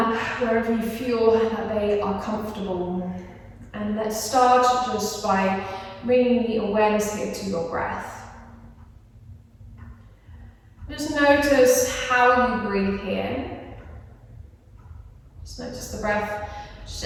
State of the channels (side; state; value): both; identical; correlation 1.00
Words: wherever you feel that they are comfortable. And let's start just by bringing the awareness here to your breath. Just notice how you breathe here. Just notice the breath